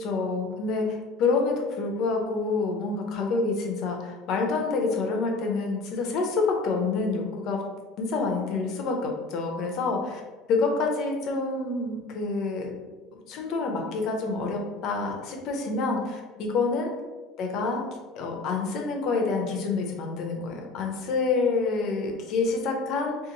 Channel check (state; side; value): quieter; right; 3.5 dB